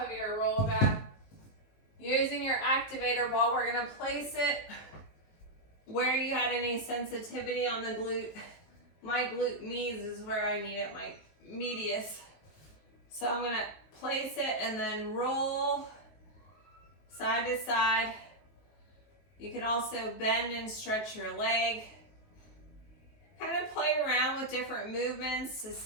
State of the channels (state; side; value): late; right; 19 ms